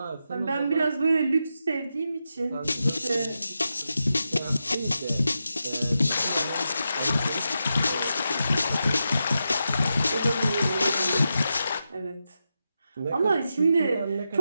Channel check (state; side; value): inverted; both; correlation -0.88